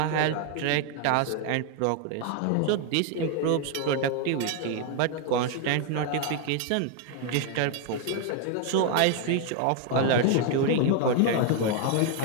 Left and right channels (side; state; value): both; different; correlation 0.01